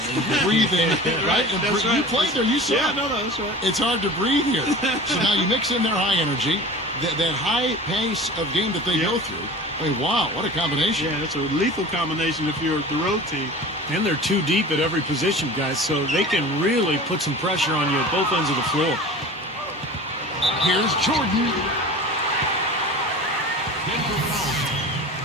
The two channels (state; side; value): normal; both; correlation 0.37